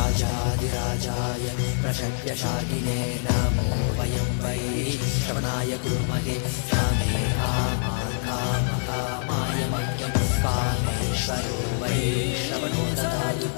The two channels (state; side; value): silent; right; 61 dB below the other